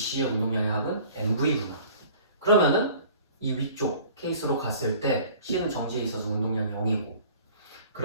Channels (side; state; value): both; inverted; correlation -0.49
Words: 운동량의 합은 MV구나. 그러면은 이 위쪽 케이스로 갔을 때 C는 정지에 있어서 운동량이 0이고